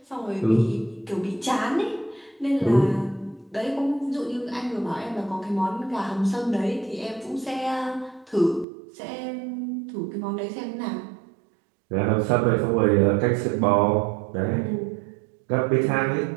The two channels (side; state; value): left; drops out; at 8.7 s